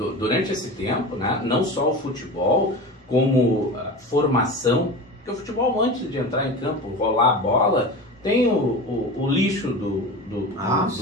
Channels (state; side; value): normal; both; correlation 0.29